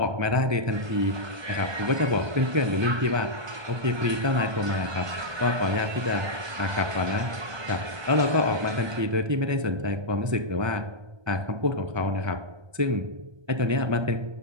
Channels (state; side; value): late; left; 1.2 ms